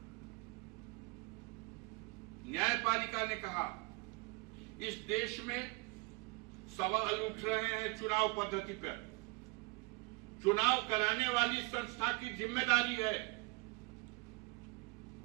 ने कहा इस देश में सवाल उठ रहे हैं चुनाव पद्धति पर। चुनाव कराने वाली संस्था की जिम्मेदारी है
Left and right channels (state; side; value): quieter; left; 27.7 dB